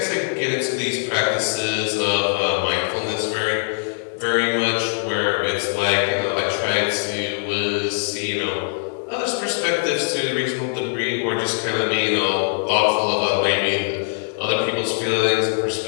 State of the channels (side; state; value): right; silent; digital silence